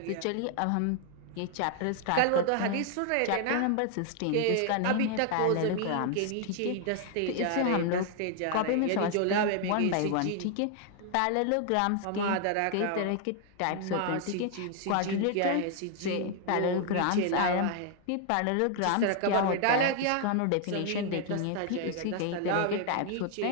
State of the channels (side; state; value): both; different; correlation 0.00